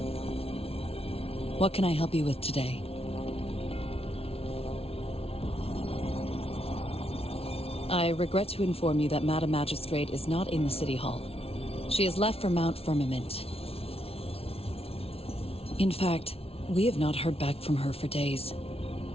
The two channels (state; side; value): late; right; 0.28 ms